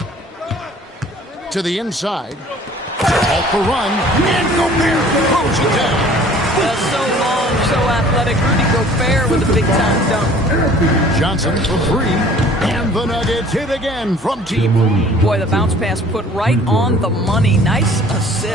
To the inside. Off the run. And Gobert throws it down. So long, so athletic. Rudy Gobert with a big-time dunk. Johnson for 3. And the Nuggets hit again from deep. Boy, the bounce pass put right on the money. Nice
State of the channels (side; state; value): both; normal; correlation 0.51